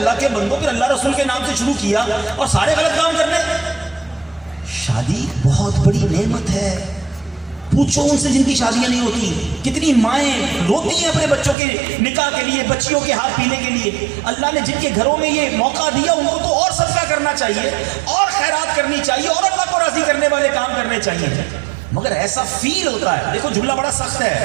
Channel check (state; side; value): drops out; left; at 11.6 s